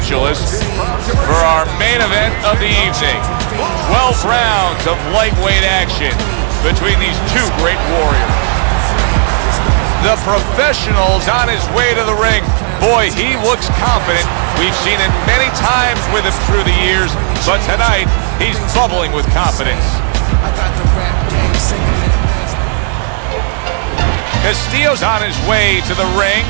for our main event of the evening. 12 rounds of lightweight action between these two great warriors. The professional's on his way to the ring. Boy, he looks confident. We've seen it many times with him through the years, but tonight he's bubbling with confidence. Castillo's on his way to the ring,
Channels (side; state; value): left; silent; 58 dB below the other